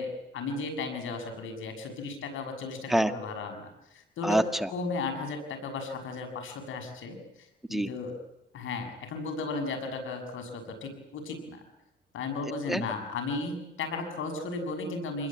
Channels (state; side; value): normal; both; correlation 0.52